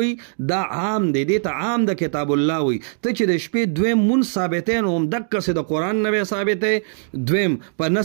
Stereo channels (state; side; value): silent; left; digital silence